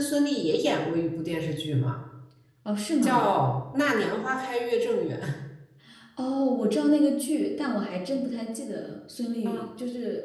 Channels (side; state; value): both; identical; correlation 1.00